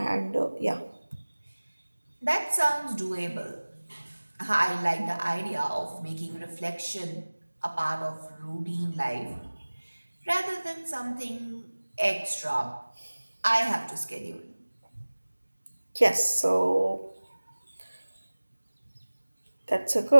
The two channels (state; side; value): inverted; both; correlation -1.00